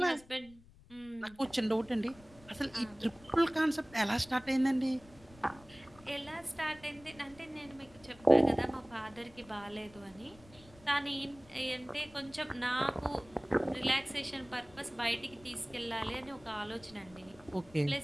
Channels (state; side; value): noise; left; rumble, 24 dB below the sound